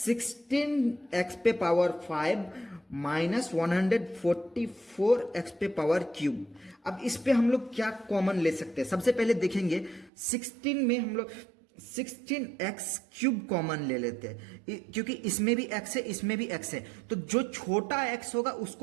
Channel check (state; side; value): drops out; left; at 10.1 s